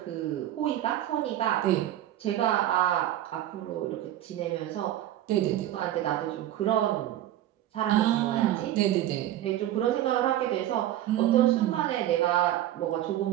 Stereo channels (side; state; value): left; quieter; 13.0 dB